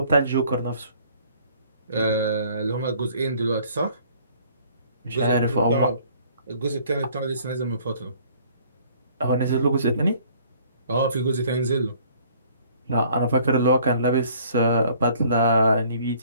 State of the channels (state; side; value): inverted; both; correlation -0.57